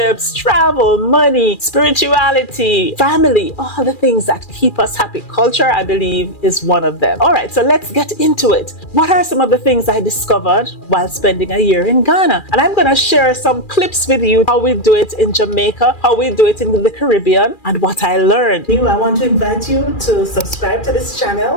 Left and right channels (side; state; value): right; late; 2.4 ms